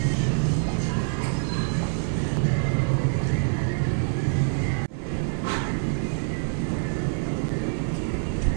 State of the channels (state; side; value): silent; left; digital silence